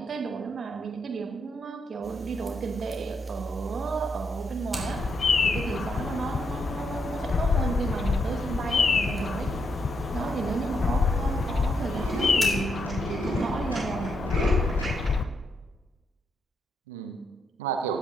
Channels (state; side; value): normal; both; correlation 0.78